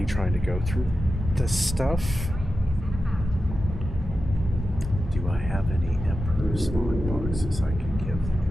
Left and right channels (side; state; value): both; normal; correlation 0.92